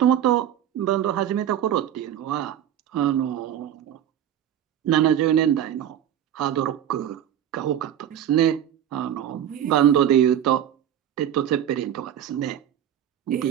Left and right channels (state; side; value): quieter; left; 10.3 dB